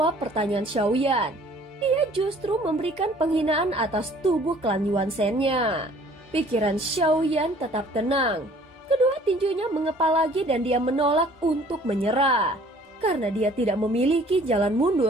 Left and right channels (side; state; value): both; normal; correlation 0.54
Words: pertanyaan Xiaoyan. Dia justru memberikan penghinaan atas tubuh klan Yuan Shen-nya. Pikiran Xiaoyan tetap tenang. Kedua tinjunya mengepal lagi dan dia menolak untuk menyerah. Karena dia tidak memiliki jalan